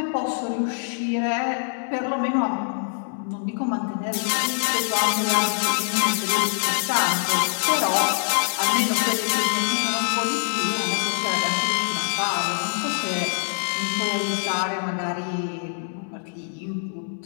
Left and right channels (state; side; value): silent; right; 62 dB below the other